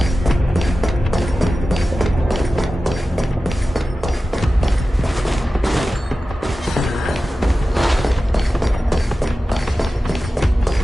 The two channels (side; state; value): both; normal; correlation 0.94